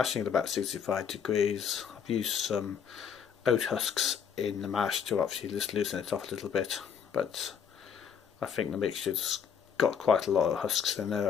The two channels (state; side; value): quieter; right; 7.4 dB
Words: at about 65 degrees. I've used some oat husks in the mash to obviously just loosen it off a little bit, but I think the mixture's got quite a lot of husks in there